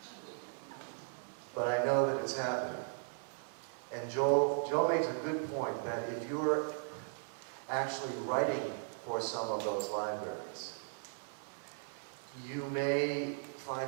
but I know that it's happening. And Joel makes a good point that if you're actually writing for some of those libraries, you may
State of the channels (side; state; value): left; silent; digital silence